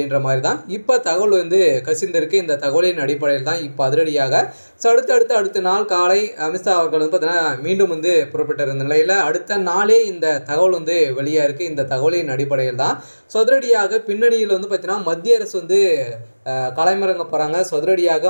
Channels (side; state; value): both; inverted; correlation -1.00